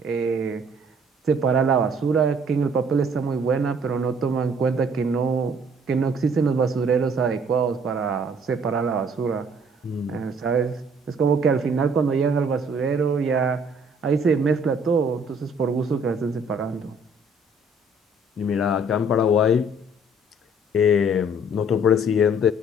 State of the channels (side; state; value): both; normal; correlation 0.59